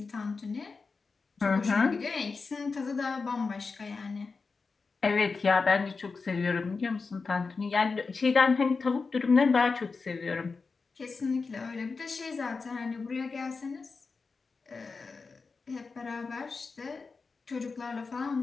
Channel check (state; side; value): quieter; right; 4.5 dB